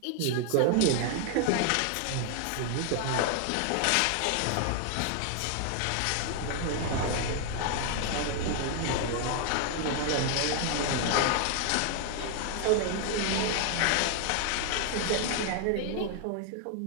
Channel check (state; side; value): different; both; correlation 0.00